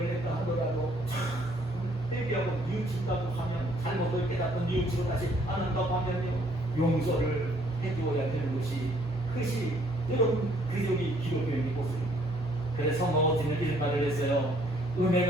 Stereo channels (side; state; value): right; noise; hum, 17 dB below the sound